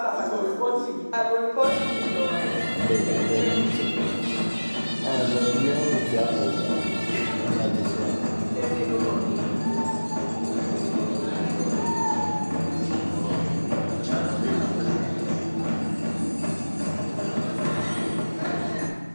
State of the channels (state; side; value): inverted; both; correlation -1.00